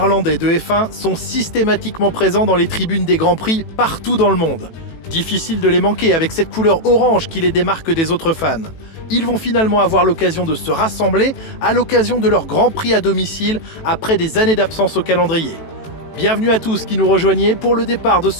de F1 sont systématiquement présents dans les tribunes des Grands Prix partout dans le monde. Difficile de les manquer avec cette couleur orange qui les démarque des autres fans. Ils vont finalement avoir l'occasion de se rassembler à l'occasion de leur Grand Prix à domicile après des années d'absence au calendrier. Bienvenue à tous qui nous rejoignez pour le départ de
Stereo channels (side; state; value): right; late; 18 ms